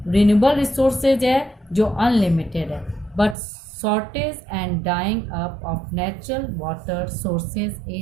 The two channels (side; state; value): left; drops out; at 3.4 s